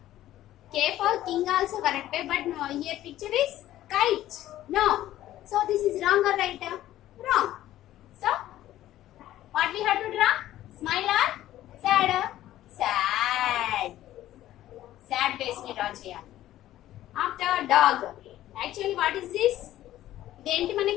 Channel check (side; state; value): right; quieter; 13.8 dB